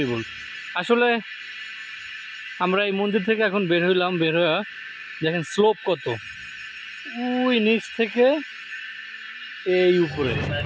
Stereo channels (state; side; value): identical; both; correlation 1.00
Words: আসলে আমরা এই মন্দির থেকে এখন বের হইলাম, বের হয়ে দেখেন স্লোপ কত, ওই নিচ থেকে এই উপরে।